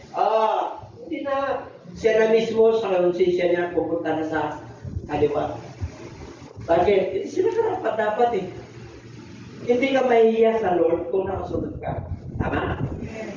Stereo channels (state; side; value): identical; both; correlation 1.00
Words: Hindi na. Siya na mismo sa konsensya niya pupunta na sa kaliwa. Bakit? Hindi sila karapat dapat eh. Hindi ka mahihiya sa Lord kung nakasunod ka. Tama?